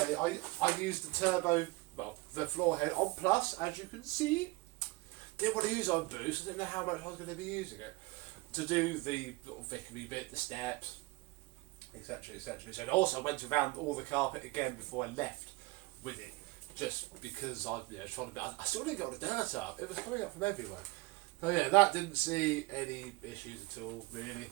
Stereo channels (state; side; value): quieter; left; 23.3 dB